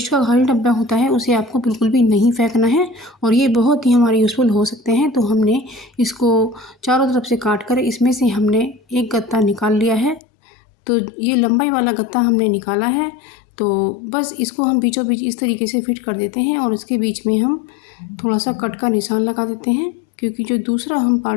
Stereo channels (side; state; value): right; drops out; at 10.2 s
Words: का खाली डब्बा होता है उसे आपको बिल्कुल भी नहीं फेंकना है और ये बहुत ही हमारे यूज़फुल हो सकते हैं। तो हमने इसको चारों तरफ से काट कर इसमें से हमने एक गत्ता निकाल लिया है। तो ये लंबाई वाला गत्ता हमने निकाला है। तो बस इसको हम बीचों बीच इस तरीके से फिट कर देते हैं और इसके बीच में हम थोड़ा सा कट का निशान लगा देते हैं, क्योंकि जो दूसरा हम